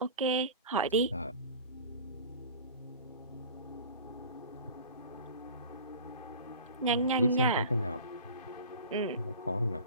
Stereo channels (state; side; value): inverted; both; correlation -0.39